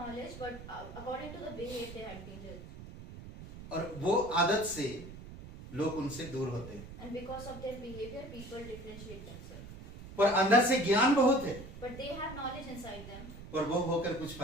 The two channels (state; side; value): noise; right; rumble, 13 dB below the sound